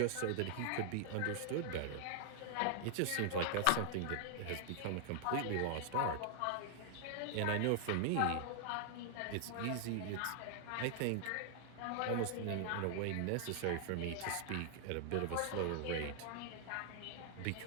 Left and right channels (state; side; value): different; both; correlation 0.00